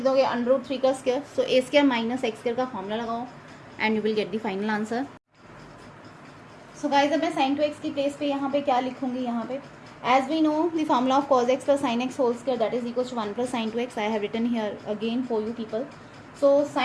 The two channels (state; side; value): identical; both; correlation 1.00